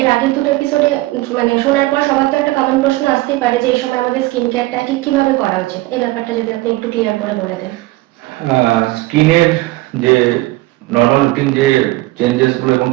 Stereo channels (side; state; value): left; quieter; 19.6 dB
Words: আগের দুটো এপিসোডে মানে শোনার পর সবার তো একটা কমন প্রশ্ন আসতেই পারে যে এই সময় আমাদের স্কিন কেয়ারটা ঠিক কিভাবে করা উচিত। এই ব্যাপারটা যদি আপনি একটু ক্লিয়ার করে বলে দেন। স্কিনের যে নর্মাল রুটিন যে চেঞ্জেস গুলো এবং